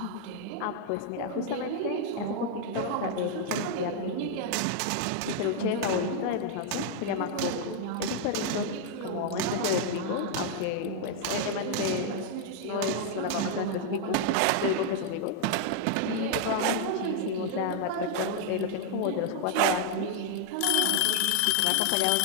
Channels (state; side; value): different; both; correlation 0.00